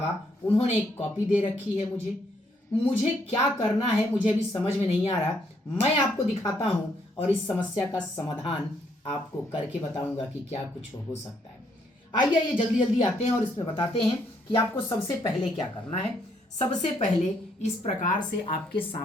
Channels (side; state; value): both; normal; correlation 0.71